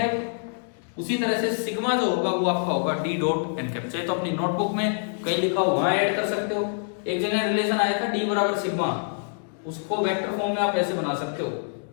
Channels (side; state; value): right; silent; digital silence